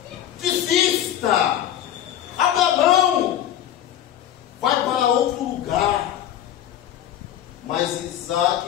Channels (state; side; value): quieter; right; 11.2 dB